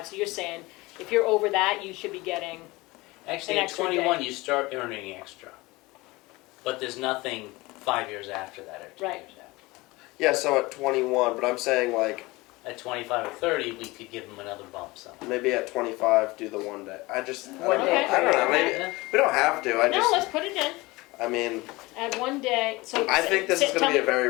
So you're saying if you're over that, you should be getting. Actually, An at extra 21, day. you start earning extra. But there's nothing 5 years after that or 2 Right. years after. Yeah, so at 21, but I'm saying like At 25 or 30, we could give them another bump somehow. maybe at 25 do the 1 day. I don't One know. day. I don't know. Maybe Okay. we don't have to. I No, just. let's put it in. I mean, Add 1 day. So I think this is tell going to be me- a very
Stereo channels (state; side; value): quieter; right; 22.0 dB